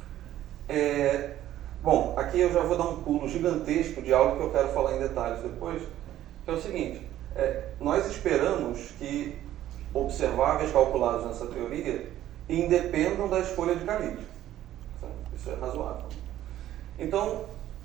Bom, aqui eu já vou dar um pulo gigantesco de algo que eu quero falar em detalhes depois, que é o seguinte: nós esperamos que observáveis calculados nessa teoria independam da escolha de calibre. Certo? Isso é razoável. Então,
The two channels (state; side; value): quieter; left; 12.9 dB